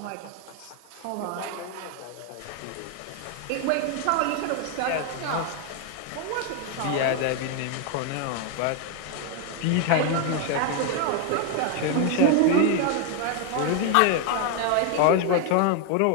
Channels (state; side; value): different; both; correlation 0.01